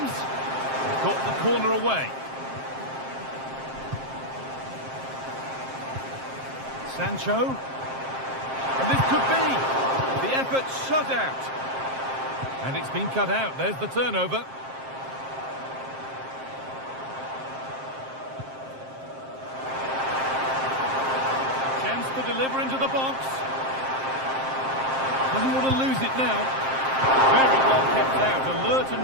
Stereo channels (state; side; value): late; left; 7.6 ms